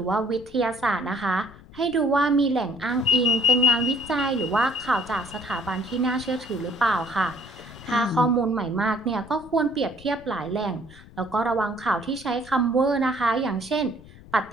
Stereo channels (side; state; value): left; noise; rumble, 20 dB below the sound